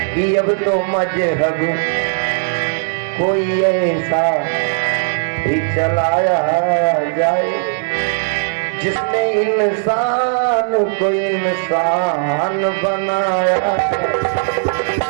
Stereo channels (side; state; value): left; silent; digital silence